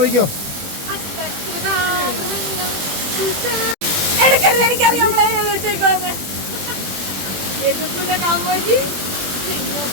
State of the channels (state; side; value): late; left; 21 ms